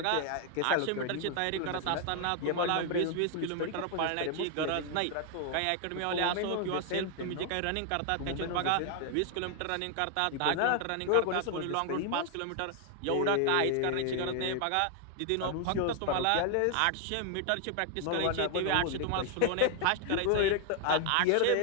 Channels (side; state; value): both; different; correlation 0.00